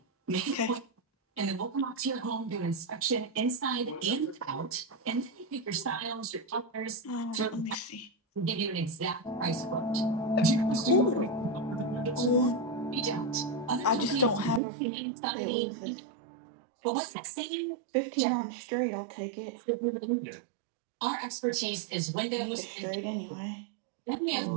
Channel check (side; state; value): left; drops out; at 14.6 s